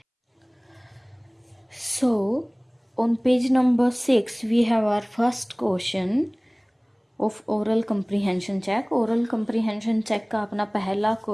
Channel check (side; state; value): both; identical; correlation 1.00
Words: So on page number 6 we have our first question of oral comprehension check. Oral comprehension check का अपना पहला